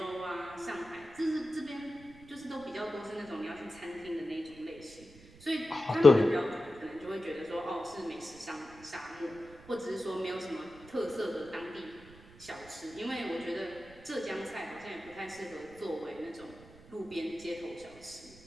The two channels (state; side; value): noise; right; rumble, 21 dB below the sound